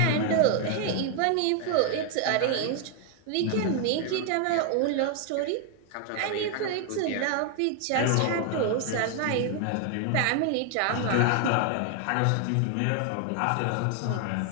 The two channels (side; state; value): both; different; correlation 0.00